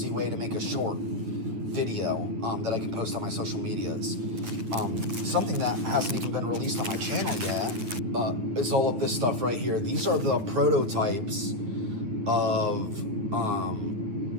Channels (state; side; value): late; left; 9.6 ms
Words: way to make a short video that I can post on my social medias. Something that hasn't even been released on my channel yet is all of this stuff right here. These are the prototypes of